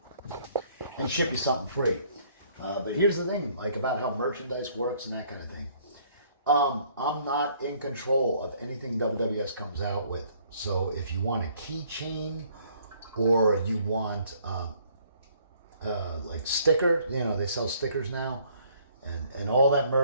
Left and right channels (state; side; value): inverted; both; correlation -0.62